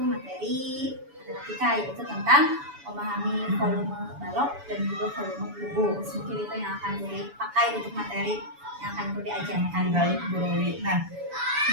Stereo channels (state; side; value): late; left; 7.0 ms